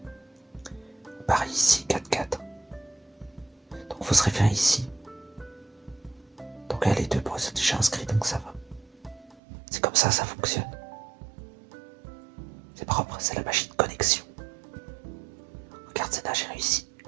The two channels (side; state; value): left; drops out; at 9.4 s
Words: On part ici, 4, 4. Donc il faut se référer ici. Donc là, les deux points sont déjà inscrits, donc ça va. C'est comme ça fonctionne. C'est propre, c'est la magie de connexion. Regarde, Zena, j'ai réussi.